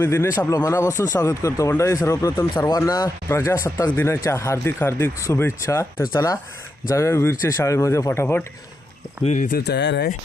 दिनेश आपलं मनापासून स्वागत करतो. मंडळी सर्वप्रथम सर्वांना प्रजासत्ताक दिनाच्या हार्दिक हार्दिक शुभेच्छा. तर चला जाऊया वीरच्या शाळेमध्ये फटाफट. वीर इथे तयार आहे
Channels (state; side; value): normal; both; correlation 0.85